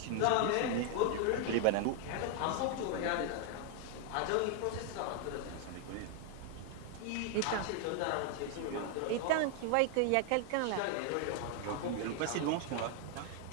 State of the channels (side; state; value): both; different; correlation 0.00